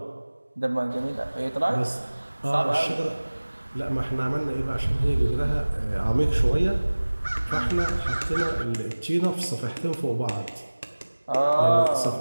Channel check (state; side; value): inverted; both; correlation -1.00